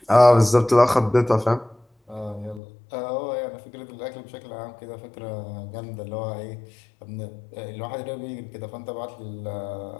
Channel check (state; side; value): drops out; right; at 2.6 s